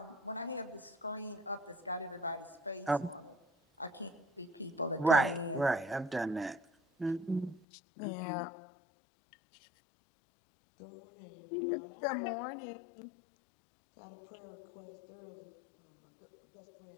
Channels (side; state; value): right; drops out; at 7.6 s